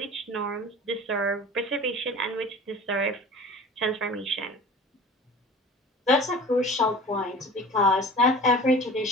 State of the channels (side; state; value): both; normal; correlation 0.40